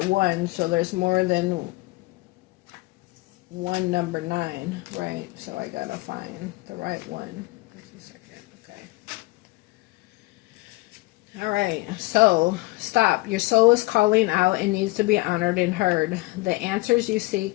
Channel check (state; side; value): quieter; right; 21.9 dB